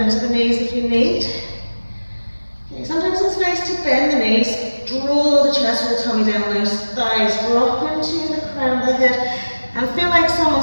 to the knees if you need. Okay, sometimes it's nice to bend the knees, draw the chest or the tummy down, those thighs drop into the crown of the head, and feel like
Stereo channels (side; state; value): both; inverted; correlation -1.00